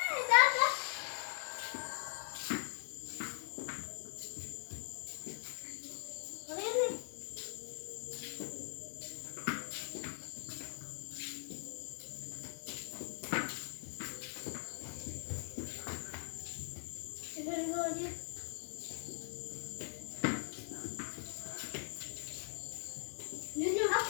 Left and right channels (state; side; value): silent; right; digital silence